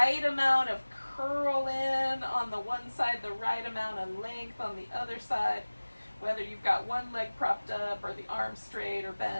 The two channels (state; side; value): inverted; both; correlation -1.00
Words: amount of curl in on the one side, the right amount of length on the other side, whether you've got one leg propped up or the arm straight or